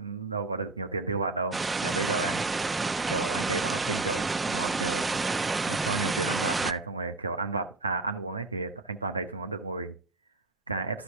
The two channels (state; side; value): quieter; left; 3.3 dB